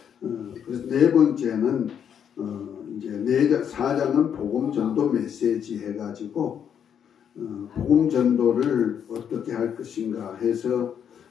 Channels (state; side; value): quieter; right; 8.4 dB